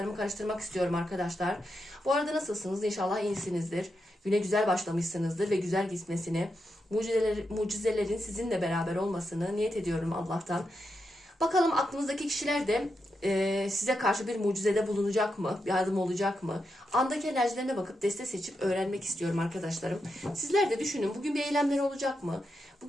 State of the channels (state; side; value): normal; both; correlation 0.86